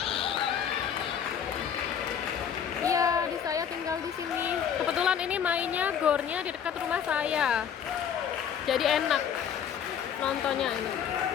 Iya, di saya tinggal di sini. Kebetulan ini mainnya gornya di dekat rumah saya. Jadi enak nontonnya ini.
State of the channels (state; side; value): quieter; right; 8.3 dB